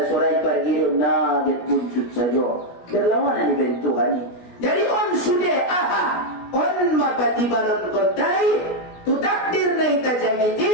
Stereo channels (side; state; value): right; late; 17 ms